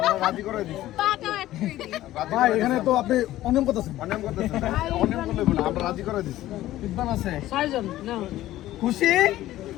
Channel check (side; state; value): right; quieter; 14.8 dB